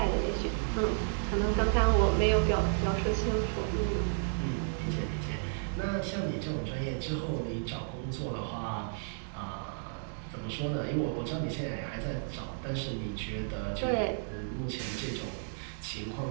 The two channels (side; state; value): left; silent; digital silence